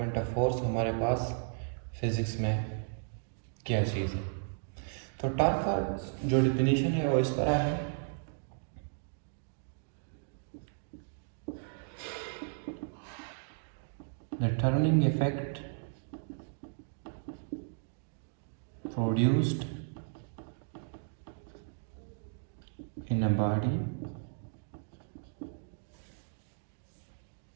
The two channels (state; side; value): silent; left; digital silence